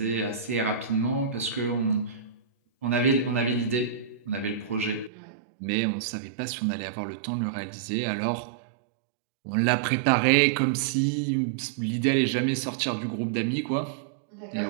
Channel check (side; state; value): left; drops out; at 5.1 s